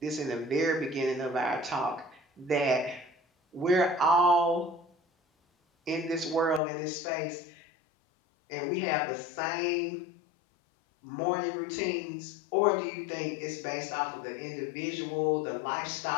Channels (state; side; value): drops out; right; at 6.6 s